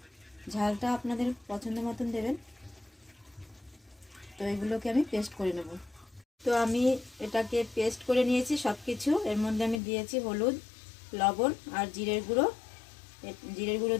ঝালটা আপনাদের পছন্দ মতন দেবেন। তো এগুলোকে আমি পেস্ট করে নেব। তো আমি এটাকে পেস্ট করে নিয়েছি সব কিছু। এর মধ্যে আমি দিয়েছি হলুদ, লবণ আর জিরের গুঁড়ো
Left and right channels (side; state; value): right; drops out; at 9.8 s